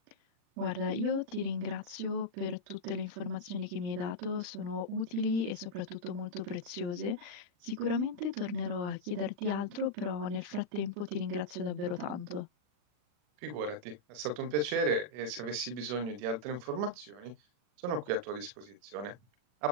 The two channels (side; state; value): left; late; 40 ms